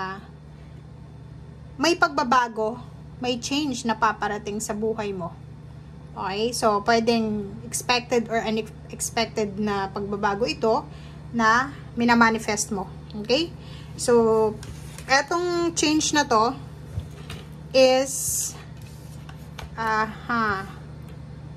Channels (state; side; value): identical; both; correlation 1.00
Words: may pagbabago, may change na paparating sa buhay mo. Okay? So, pwedeng expected or unexpected na pagbabago ito na minamanifest mo. Okay? So, etong change na to is 4